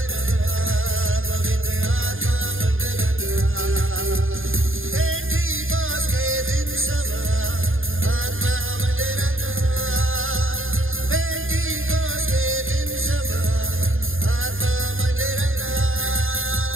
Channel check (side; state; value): left; late; 0.59 ms